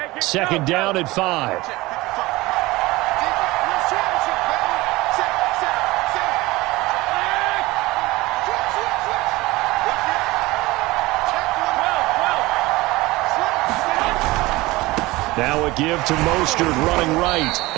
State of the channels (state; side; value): quieter; left; 20.5 dB